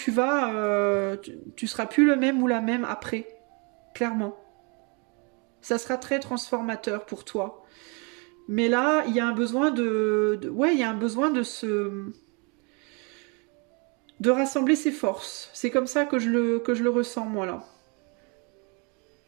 vas, tu seras plus le même ou la même après. Clairement. Ça sera très transformateur pour toi. Mais là, il y a un besoin ouais, il y a un besoin de rassembler ses forces. C'est comme ça que je le ressens, moi, là.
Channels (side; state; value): left; quieter; 33.0 dB